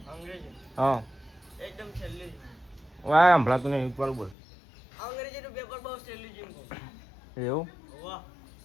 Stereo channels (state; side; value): drops out; right; at 4.4 s